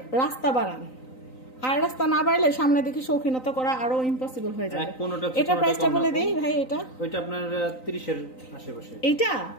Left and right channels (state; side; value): late; right; 3.9 ms